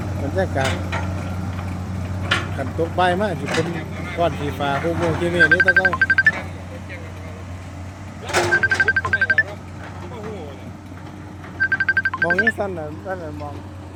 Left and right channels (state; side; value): identical; both; correlation 1.00